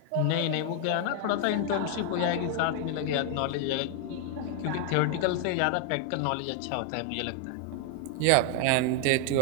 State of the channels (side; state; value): both; different; correlation 0.00